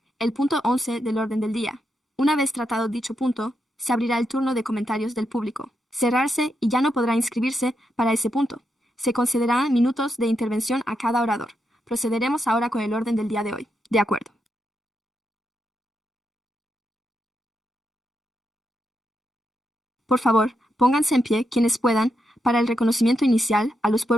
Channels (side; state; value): both; normal; correlation 0.84